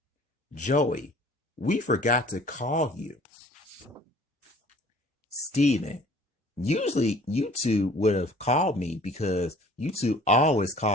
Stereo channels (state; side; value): normal; both; correlation 0.51